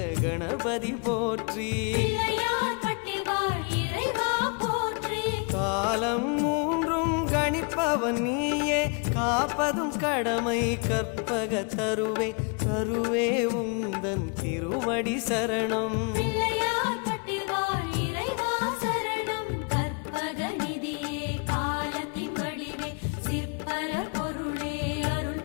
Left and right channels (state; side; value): quieter; right; 36.1 dB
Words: கணபதி போற்றி காலம் மூன்றும் கணிப்பவன் நீயே காப்பதும் கடமை கற்பக தருவே தருவே உந்தன் திருவடி சரணம்